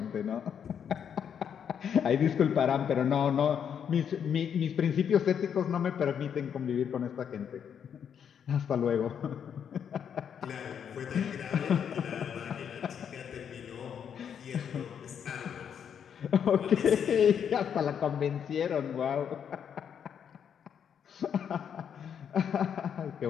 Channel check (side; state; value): right; quieter; 8.0 dB